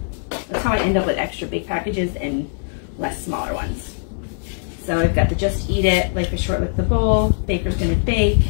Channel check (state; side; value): silent; right; digital silence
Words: That's how I end up with extra big packages and less smaller ones. So I've got the Just Eat It, Life is Short, Lick the Bowl, Baker's Gonna Bake.